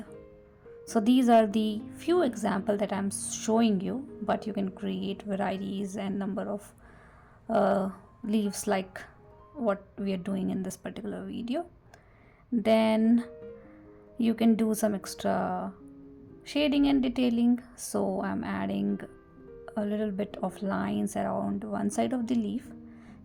So these are the few examples that I'm showing you, but you can create varieties and number of leaves like what we are doing in this particular video. Then you can do some extra shading and detailing. So I'm adding a little bit of lines around one side of the leaf.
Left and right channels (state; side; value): identical; both; correlation 1.00